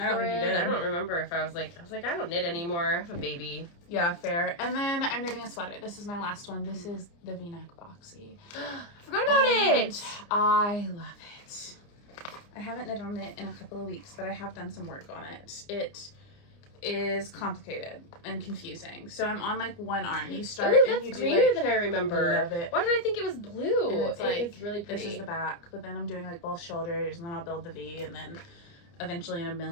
I don't think you did. I don't remember if I was like, I don't knit anymore. I have a baby. Yeah, fair. And then I'm knitting a sweater. This is my last one. This is the VNeck Boxy. I forgot about it. I love it. I haven't knit on it in a couple of weeks, but I have done some work on it. It is complicated and confusing. So I'm on like one arm. You start and you do greener like, than I remember. I love it. Why did I think it was blue? And it's like, it's really pretty. This is the back, but then I'm doing like both shoulders, and then I'll build the V, and then eventually in a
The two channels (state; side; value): late; right; 29 ms